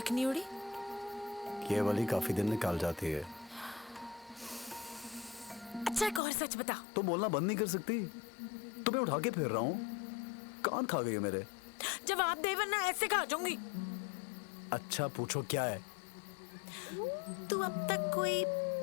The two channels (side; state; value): right; drops out; at 6.2 s